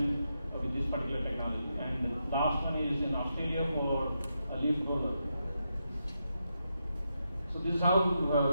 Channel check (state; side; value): inverted; both; correlation -0.85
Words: with this particular technology. And the last one is in Australia for a leaf roller. So this is how